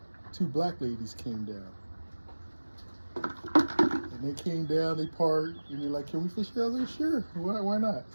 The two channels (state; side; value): inverted; both; correlation -1.00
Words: 2 black ladies came down. And they came down, they parked, and they're like, "Can we fish here?" I was like, "Sure, why not?"